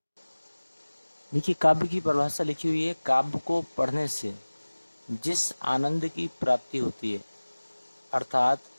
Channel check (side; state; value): both; inverted; correlation -1.00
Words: देखिए, काव्य की परिभाषा लिखी हुई है, काव्य को पढ़ने से जिस आनंद की प्राप्ति होती है, अर्थात